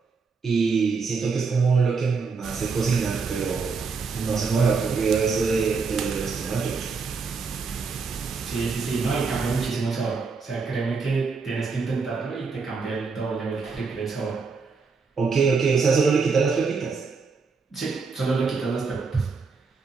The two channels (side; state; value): left; quieter; 4.9 dB